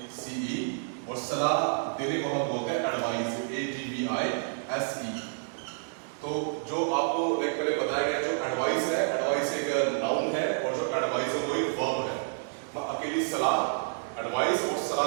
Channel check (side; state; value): left; silent; digital silence